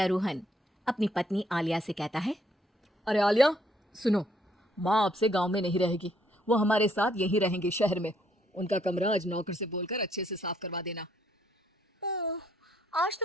रोहन अपनी पत्नी आलिया से कहता है, अरे आलिया, सुनो, माँ अब से गांव में नहीं रहेगी, वो हमारे साथ यहीं रहेंगे शहर में। उनका कमरा आज नौकर से बोलकर अच्छे से साफ करवा देना। आज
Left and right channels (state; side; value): normal; both; correlation 0.69